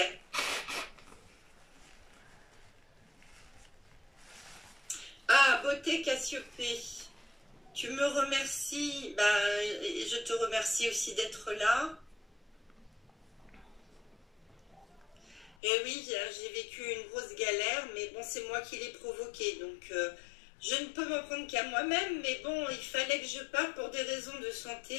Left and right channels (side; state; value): right; drops out; at 15.6 s